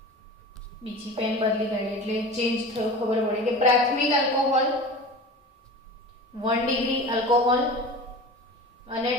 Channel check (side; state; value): both; normal; correlation 0.34